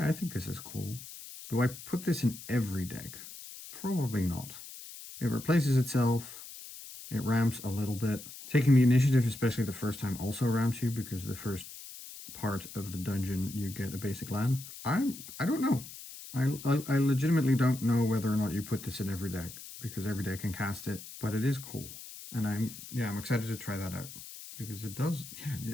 I think this is cool. Do I put this in every deck? Probably not. It replaces itself. It ramps a little bit. Taking the initiative, especially the first time, also ramps you because the first part of the dungeon you get a basic land. I don't know. I legitimately don't know whether or not you put this in every deck because every deck can cast it, but it is cool. And I'm excited to try that out because it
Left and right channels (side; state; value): left; noise; hiss, 14 dB below the sound